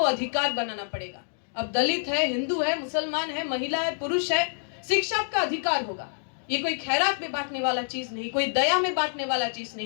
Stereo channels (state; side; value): silent; right; digital silence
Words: अधिकार बनाना पड़ेगा। अब दलित है, हिंदू है, मुसलमान है, महिला है, पुरुष है, शिक्षा का अधिकार होगा। ये कोई खैरात में बांटने वाला चीज नहीं, कोई दया में बांटने वाला चीज